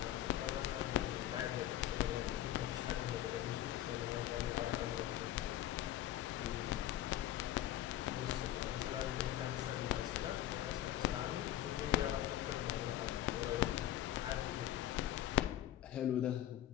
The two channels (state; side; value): quieter; right; 12.9 dB